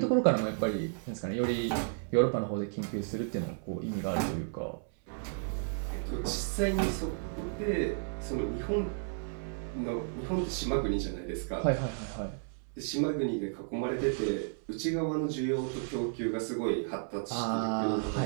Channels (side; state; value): left; silent; 56 dB below the other